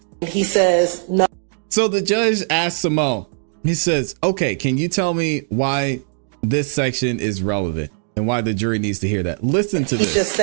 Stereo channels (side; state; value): left; silent; 66 dB below the other